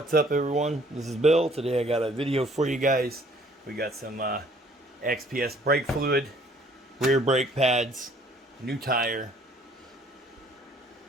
up, everyone? This is Bill. Today I got a video for you guys. We got some XPS brake fluid, rear brake pads, new tire,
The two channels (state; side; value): normal; both; correlation 0.58